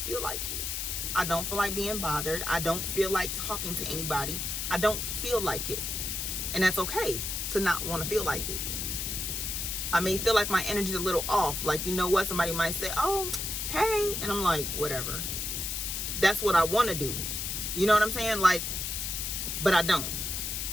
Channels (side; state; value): left; noise; hiss, 3 dB below the sound